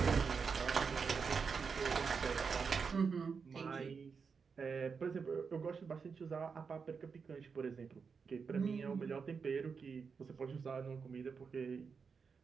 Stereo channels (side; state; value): left; quieter; 5.6 dB